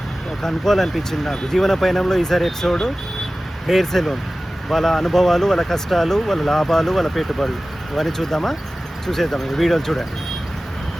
కనుక్కోవాలనిపించింది నాకు. జీవన పయనంలో ఈసారి ఎపిసోడ్ హెయిర్ సెలూన్, వాళ్ళ అనుభవాలు, వాళ్ళ కష్టాలు, వాళ్ళ లాభాలు, వాళ్ళ పెట్టుబడులు ఇవన్నీ చూద్దామా? చూసేద్దాం. ఈ వీడియోలు చూడండి.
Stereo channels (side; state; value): both; normal; correlation 0.96